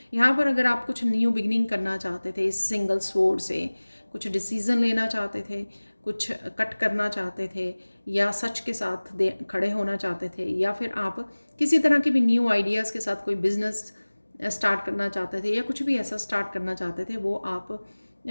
यहाँ पर अगर आप कुछ न्यू बिगनिंग करना चाहते थे इस सिंगल स्वॉर्ड से, कुछ डिसीजन लेना चाहते थे, कुछ कट करना चाहते थे, या सच के साथ खड़े होना चाहते थे, या फिर आप किसी तरह के भी न्यू आइडियाज़ के साथ कोई बिजनेस स्टार्ट करना चाहते थे, या कुछ भी ऐसा स्टार्ट करना चाहते थे, वो आप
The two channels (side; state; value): both; inverted; correlation -1.00